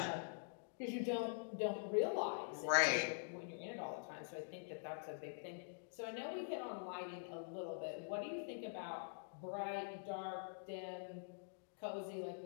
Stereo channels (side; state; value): right; silent; digital silence